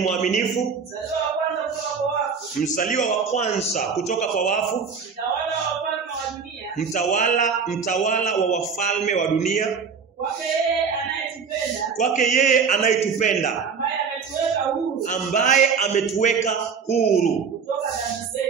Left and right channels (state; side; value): quieter; left; 5.9 dB